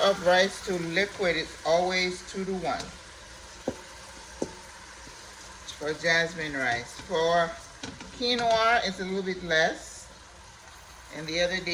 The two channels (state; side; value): identical; both; correlation 1.00